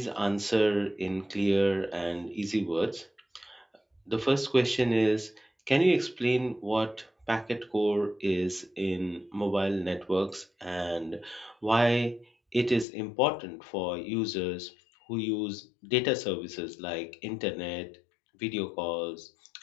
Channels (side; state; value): right; drops out; at 12.9 s